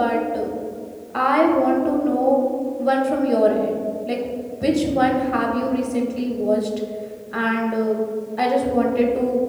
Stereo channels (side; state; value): both; identical; correlation 1.00